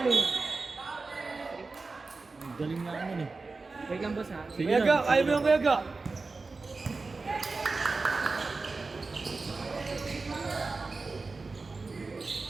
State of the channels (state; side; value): quieter; left; 3.9 dB